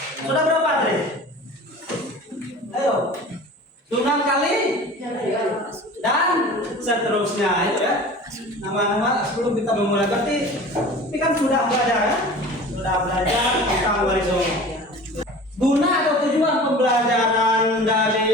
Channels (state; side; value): normal; both; correlation 0.40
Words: Sudah berapa Andre? Ayo. Sunan Kali dan seterusnya itu ya. Nama-nama sebelum kita memulai berarti ini kan sudah belajar ya? Sudah belajar tentang Wali Songo. Guna atau tujuan pembelajaran